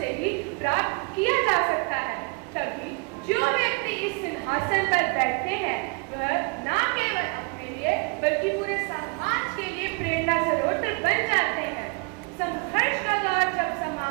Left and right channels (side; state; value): left; quieter; 31.6 dB